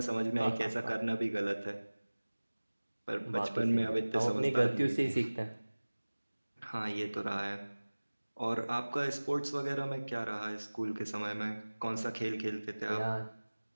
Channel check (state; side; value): inverted; both; correlation -1.00